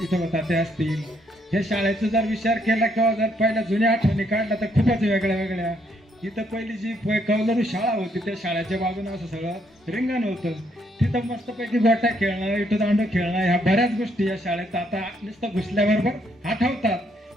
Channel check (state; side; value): normal; both; correlation 0.72